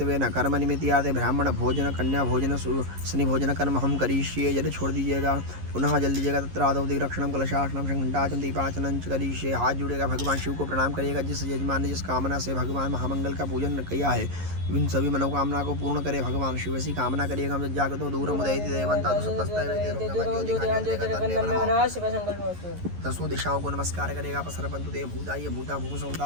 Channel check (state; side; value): late; left; 11 ms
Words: न कर्म निमित्तार्थे ब्राह्मण भोजन कन्या भोजन शनि भोजन कर्म हम करिष्ये। जल छोड़ दीजिएगा। पुनः जल्दी जगह तत्र आदौ दिग्रक्षणम कलशासनम घंटाचन दीपाचन करिष्ये। हाथ जुड़ेगा, भगवान शिव को प्रणाम करिएगा। जिस यजमान ने जिस कामना से भगवान महामंगल का पूजन किया है इन सभी मनोकामना को पूर्ण करे भगवान शिव। ऐसी कामना करिएगा। हम जागतो दूर दसों दिशाओं को नमस्कार करेगा। पसरपंतु देव भूताय भूता